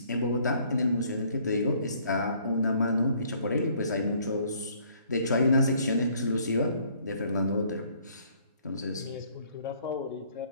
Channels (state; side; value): inverted; both; correlation -0.62